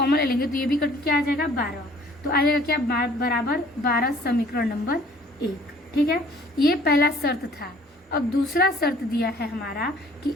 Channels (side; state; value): both; normal; correlation 0.55